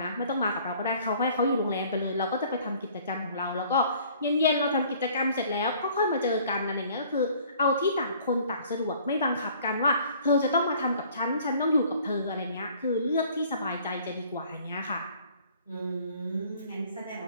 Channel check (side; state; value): both; inverted; correlation -0.55